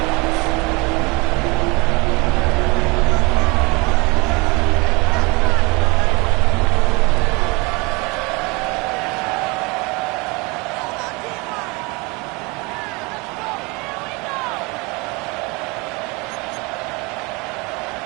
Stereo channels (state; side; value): quieter; left; 26.9 dB